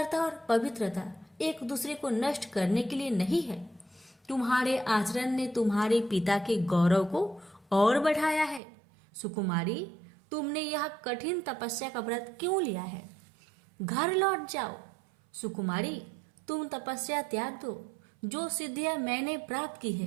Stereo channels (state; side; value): drops out; left; at 8.6 s